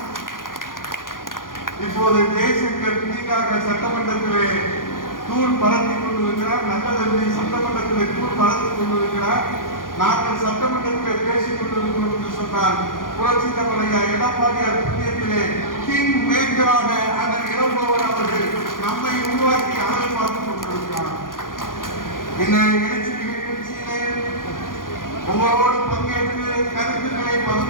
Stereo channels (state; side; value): late; right; 0.90 ms